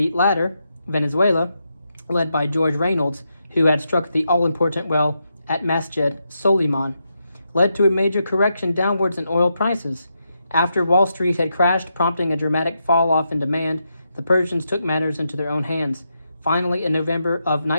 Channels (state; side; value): inverted; both; correlation -0.84